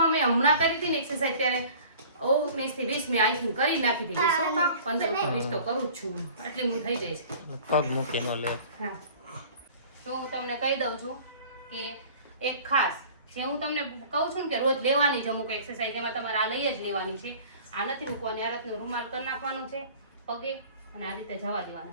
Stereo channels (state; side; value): inverted; both; correlation -0.46